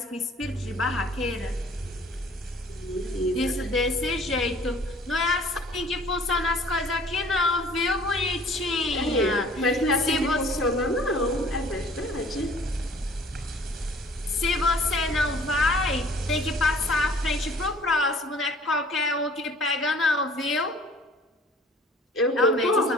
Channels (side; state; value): both; normal; correlation 0.52